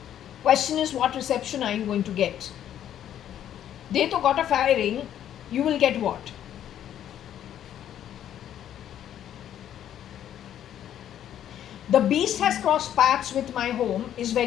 Question is, what reception are you going to get? They to got a firing, you will get what? The beast has crossed paths with my home is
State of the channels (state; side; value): quieter; right; 10.6 dB